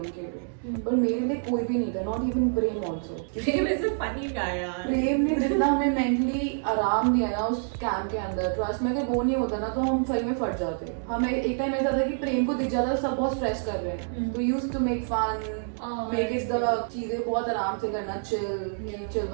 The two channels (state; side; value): silent; left; digital silence